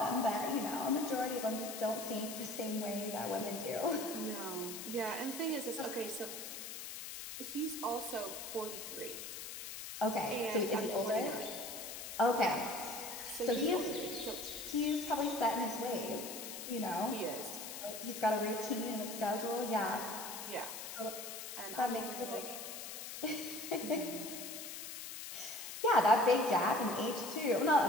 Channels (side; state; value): left; noise; hiss, 8 dB below the sound